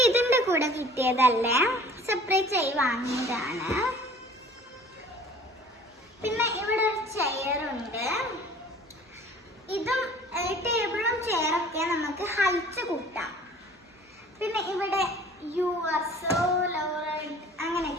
ഇതിൻ്റെ കൂടെ കിട്ടിയതല്ലേ, സെപ്പറേറ്റ് ആയി വാങ്ങിയതാണ്. പിന്നെ ഇവിടെ ഒരു ചെയറുണ്ട്. ഇതും ടേബിളും ചെയറൊക്കെ നമുക്ക് ഹൈറ്റ് കൂട്ടാം. പിന്നെ ഇവിടെ യു ആർ സോ ലവ്ഡ്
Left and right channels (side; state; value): both; normal; correlation 0.48